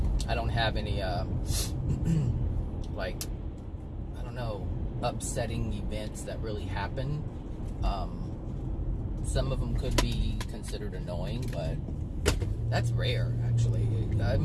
I don't have any like, I don't know, upsetting events that really happen. Some of them could be considered annoying, but that's rare, actually. I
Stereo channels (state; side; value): identical; both; correlation 1.00